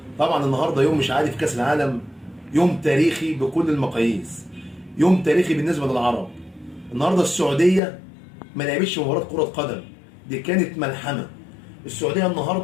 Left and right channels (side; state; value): right; drops out; at 7.8 s